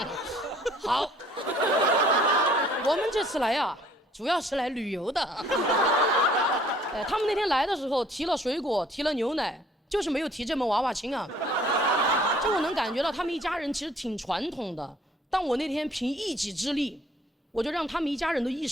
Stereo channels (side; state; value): both; normal; correlation 0.57